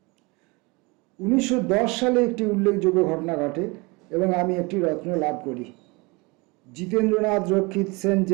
1910 সালে একটি উল্লেখযোগ্য ঘটনা ঘটে এবং আমি একটি রত্ন লাভ করি। জিতেন্দ্রনাথ রক্ষিত সেন্ট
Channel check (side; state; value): left; quieter; 26.5 dB